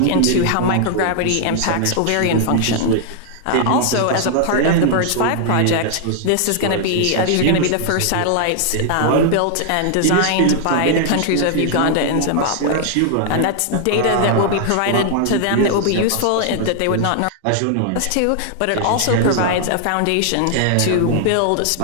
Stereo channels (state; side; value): different; both; correlation 0.00